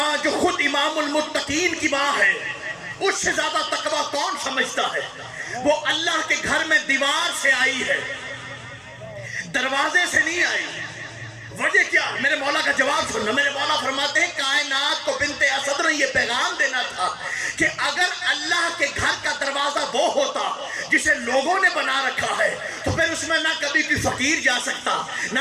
جو خود امام المتقین کی ماں ہے، اس سے زیادہ تقوی کون سمجھتا ہے؟ وہ اللہ کے گھر میں دیوار سے آئی ہے، دروازے سے نہیں آئی۔ وجہ کیا؟ میرے مولا کا جواب سننا۔ میرے مولا فرماتے ہیں کائنات کو بنت اسد نے یہ پیغام دینا تھا کہ اگر اللہ کے گھر کا دروازہ وہ ہوتا جسے لوگوں نے بنا رکھا ہے تو پھر اس میں نہ کبھی کوئی فقیر جا سکتا،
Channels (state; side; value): identical; both; correlation 1.00